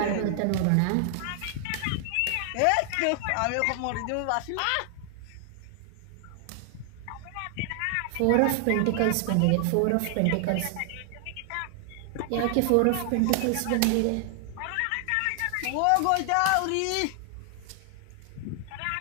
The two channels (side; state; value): both; different; correlation 0.00